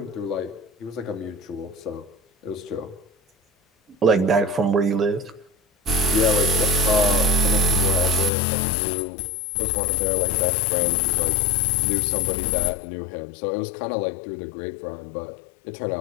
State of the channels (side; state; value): right; drops out; at 8.3 s